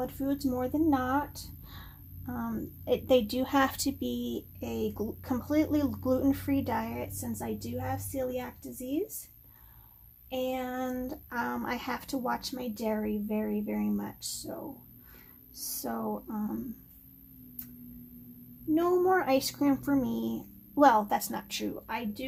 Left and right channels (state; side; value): identical; both; correlation 1.00